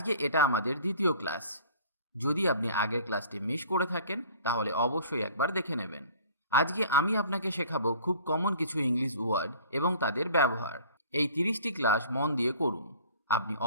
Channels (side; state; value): both; inverted; correlation -0.49